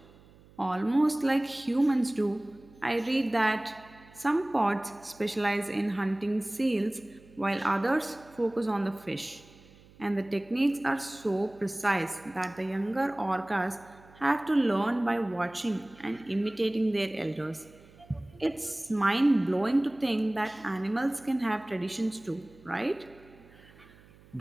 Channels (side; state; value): right; noise; hum, 25 dB below the sound